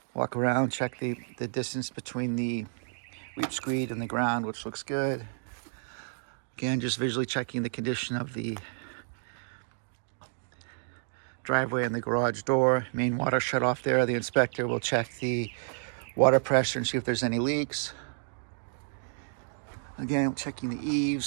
Walk around, check the distance between the weep screed and the ground, which looks good. Again, just visually checking the condition of the driveway and the garage door. Main water shut off there. The inspector will check the water pressure and see if there's any leaks. Again, checking the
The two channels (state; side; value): silent; left; digital silence